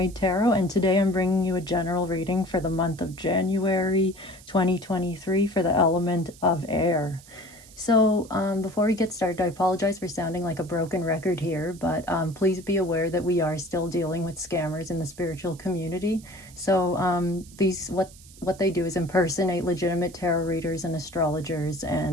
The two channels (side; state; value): right; noise; hiss, 22 dB below the sound